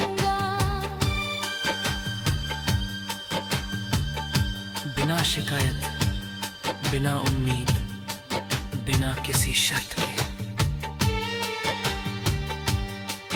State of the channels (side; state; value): both; identical; correlation 1.00